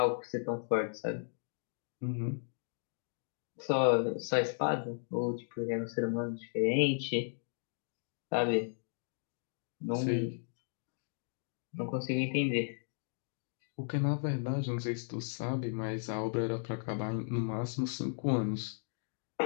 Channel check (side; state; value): right; silent; digital silence